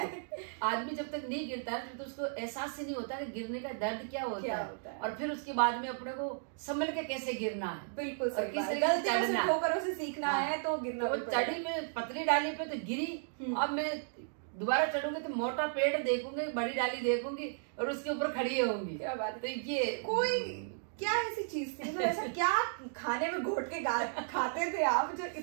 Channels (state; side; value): silent; left; digital silence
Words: आदमी जब तक नहीं गिरता है तो उसको एहसास ही नहीं होता कि गिरने का दर्द क्या होता है, और फिर उसके बाद में अपने को संभल के कैसे गिरना है। बिल्कुल सही बात, गलतियों से ठोकरों से सीखना है तो गिरना। वो चढ़ी में पतली डाली पे तो गिरी, अब मैं दोबारा चढ़ूंगी तो मोटा पेड़ देखूंगी, बड़ी डाली देखूंगी और उसके ऊपर खड़ी होंगी। क्या बात है। तो ये कोई क्या ऐसी चीज थी, मतलब ऐसा क्या खाने में घोट के खाते थे आप जो